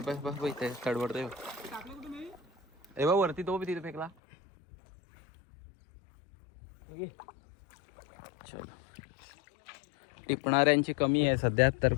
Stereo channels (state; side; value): drops out; right; at 4.1 s